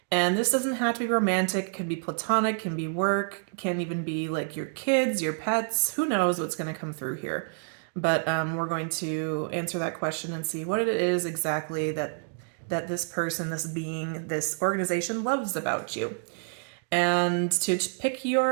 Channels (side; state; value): left; silent; digital silence